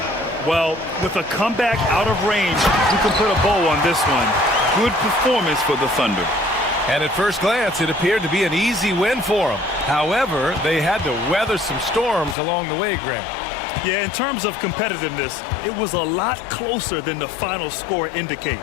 Well, with a comeback out of range, we can put a bow on this one. Good performance for the Thunder. And at first glance, it appeared to be an easy win for them. However, they had to weather some storms along the way, Grant. Yeah, in terms of competitiveness, it was a lot closer than the final score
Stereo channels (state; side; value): drops out; right; at 12.4 s